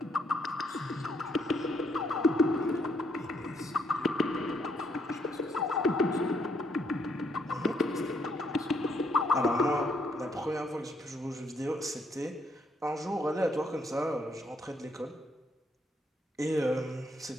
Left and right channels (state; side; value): normal; both; correlation 0.72